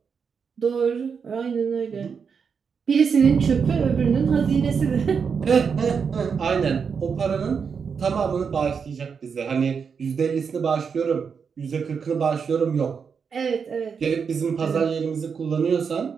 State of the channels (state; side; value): quieter; left; 6.2 dB